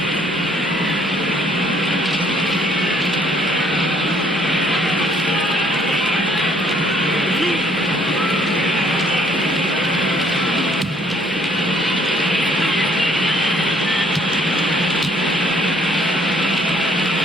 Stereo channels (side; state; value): both; normal; correlation 0.63